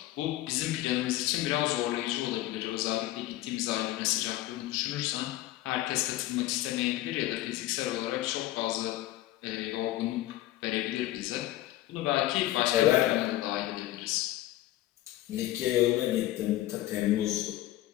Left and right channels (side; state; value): right; quieter; 15.3 dB